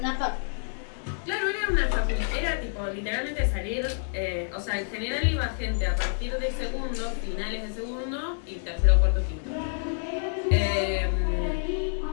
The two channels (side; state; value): right; silent; digital silence